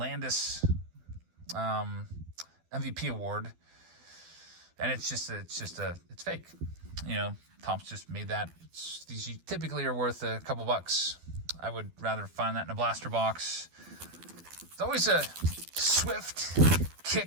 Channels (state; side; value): late; left; 12 ms